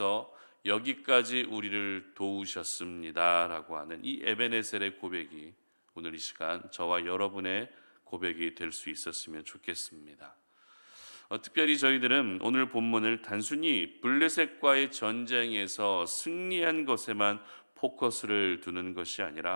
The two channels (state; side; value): inverted; both; correlation -1.00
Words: 여기까지 우리를 도우셨습니다라고 하는 이 에벤에셀의 고백이 오늘 이 시간 저와 여러분의 고백이 될 수 있었으면 좋겠습니다. 특별히 저희들은 오늘 본문을 단순히 블레셋과의 전쟁에서 승리한 것에만 포커스를 두는 것이